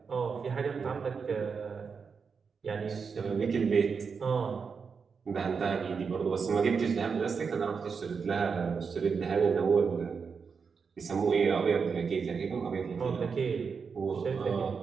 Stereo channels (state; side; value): quieter; left; 5.6 dB